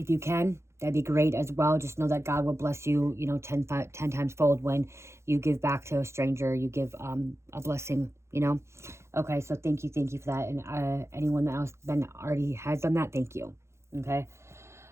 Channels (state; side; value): late; left; 0.13 ms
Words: you can, that'd be great as well. Just know that God will bless you, you know, 10 times fold when you give back to a stranger. You give a blessing, you know. Okay, so thank you for that. And anyone else that already has done that, thank you.